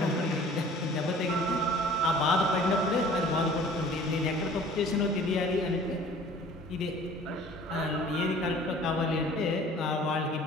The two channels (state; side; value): normal; both; correlation 0.49